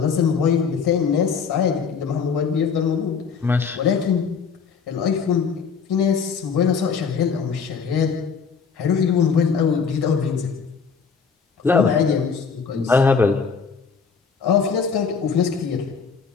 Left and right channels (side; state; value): right; quieter; 5.9 dB